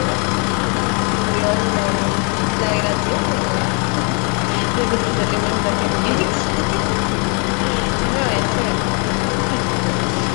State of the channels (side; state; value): right; quieter; 36.3 dB